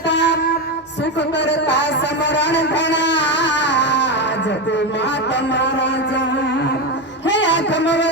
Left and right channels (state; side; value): normal; both; correlation 0.13